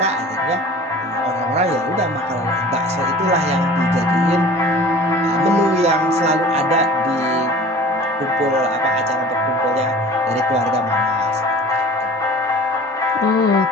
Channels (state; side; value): normal; both; correlation 0.43